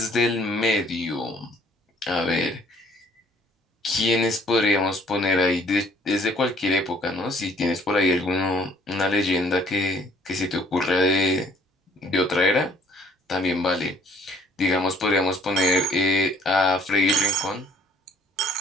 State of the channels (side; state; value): both; normal; correlation 0.60